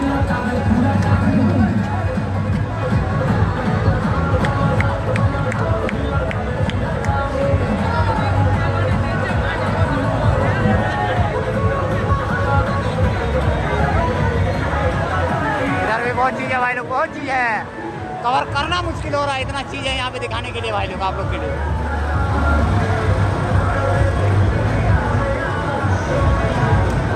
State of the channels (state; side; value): identical; both; correlation 1.00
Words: बहुत चीज़ है भाई लोग, बहुत चीज़ है, कवर करना मुश्किल हो रहा है, इतना चीज़ है यहाँ पे दिखाने के लिए भाई लोग, आप लोग के लिए।